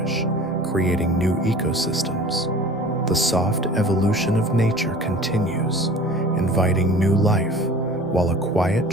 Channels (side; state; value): right; noise; rumble, 27 dB below the sound